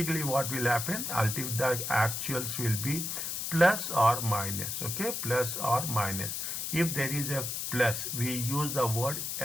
what will happen? Ultimately, the actuals will be plus or minus. Okay, plus or minus. If there is a plus, we use the word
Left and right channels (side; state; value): left; noise; hiss, 3 dB below the sound